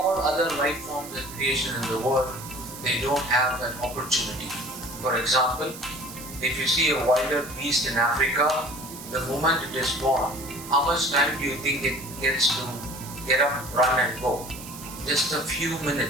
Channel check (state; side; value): noise; right; hiss, 13 dB below the sound